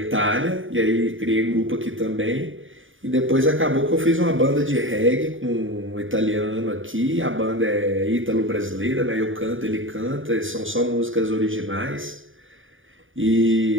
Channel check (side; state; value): left; late; 0.57 ms